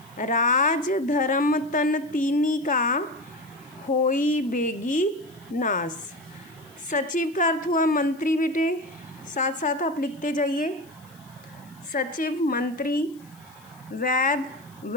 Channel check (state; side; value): noise; left; hiss, 27 dB below the sound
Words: राज धर्म तन तीनी का, होई बेगी नास। सचिव का अर्थ हुआ मंत्री बेटे, साथ साथ आप लिखते जाइए। सचिव मंत्री, वैद्य